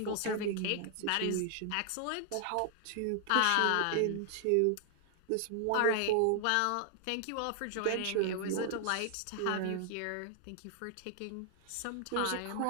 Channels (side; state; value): both; different; correlation 0.00